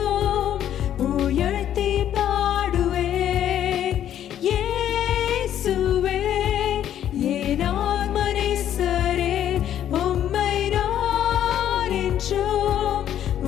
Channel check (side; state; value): right; quieter; 10.7 dB